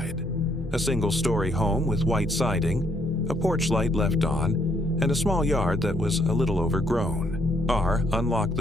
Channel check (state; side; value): normal; both; correlation 0.70